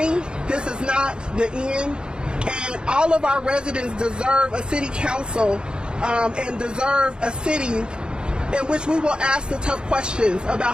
This is not the end. And all of our residents deserve a city council and deserve a city in which we will ask the tough questions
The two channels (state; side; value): late; left; 0.050 ms